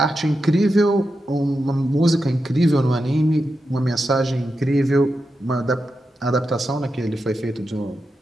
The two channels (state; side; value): normal; both; correlation 0.88